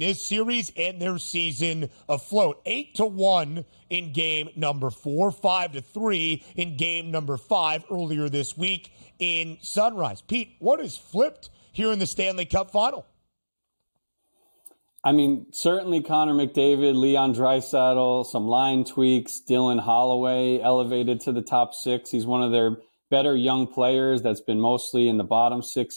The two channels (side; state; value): both; inverted; correlation -1.00